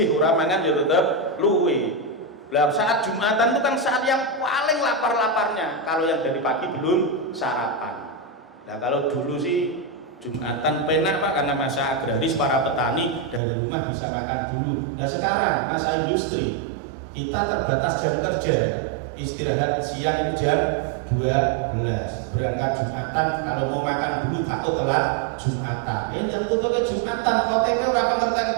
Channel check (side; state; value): left; drops out; at 13.4 s